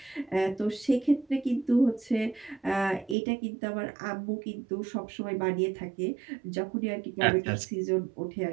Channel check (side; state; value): left; drops out; at 3.2 s